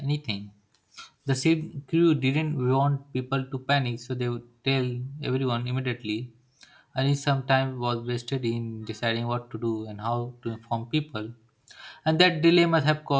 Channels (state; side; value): identical; both; correlation 1.00